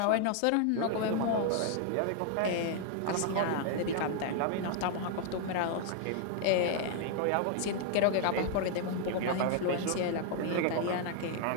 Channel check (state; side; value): different; both; correlation 0.00